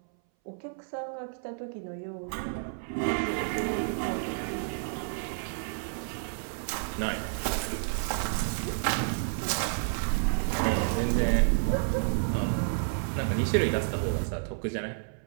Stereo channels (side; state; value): left; silent; 58 dB below the other